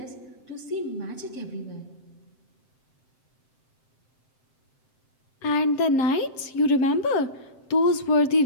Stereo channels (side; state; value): right; late; 7.7 ms